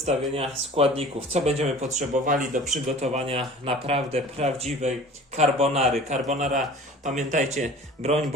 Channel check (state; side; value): normal; both; correlation 0.44